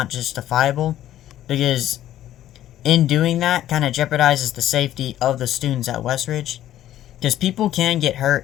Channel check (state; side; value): quieter; right; 12.7 dB